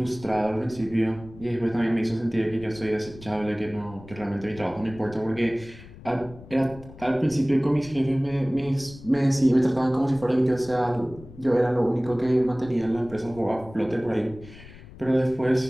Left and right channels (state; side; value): noise; left; rumble, 18 dB below the sound